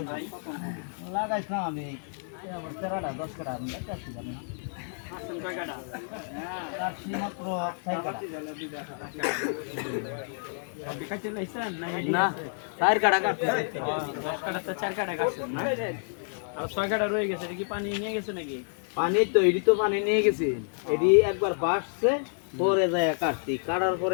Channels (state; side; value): silent; right; digital silence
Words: লাগাইছিলাম আমি আবার 13টা 10 কাটা লাগাইছি না কাটছি মাত্র 6 কাটা না 4 কাটা কাটছি 10 কাটা তো 4 কাটা কাটছেন না আর 6 কাটা রয়ে গেছে এটা কি পানি নিয়ে গেছে নাকি পানি তো এডি তো পানি নিয়ে গেছি এডি একবার বাসছে পরে যায় কাটছি কাটার